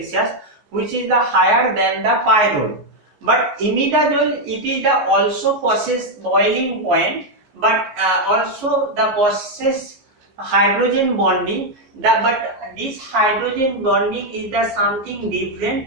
which is the higher than the pyrrole. But imidazole, it is the also possess boiling point, but also the possess hydrogen bonding. But this hydrogen bonding is the something different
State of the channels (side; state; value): left; late; 14 ms